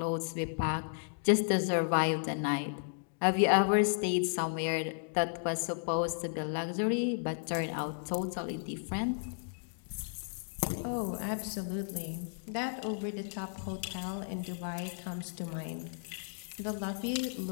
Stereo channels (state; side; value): silent; right; digital silence